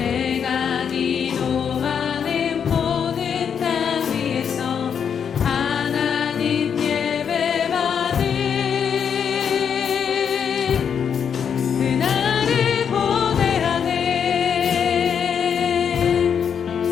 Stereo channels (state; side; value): quieter; right; 7.5 dB